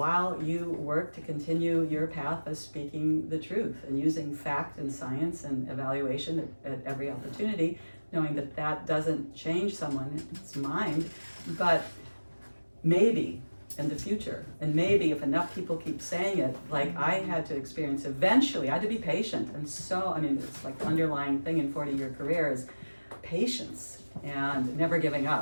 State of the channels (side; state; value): both; inverted; correlation -1.00